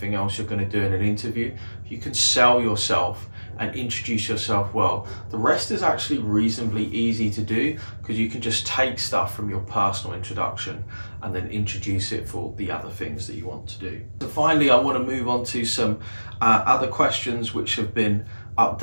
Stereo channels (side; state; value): both; inverted; correlation -1.00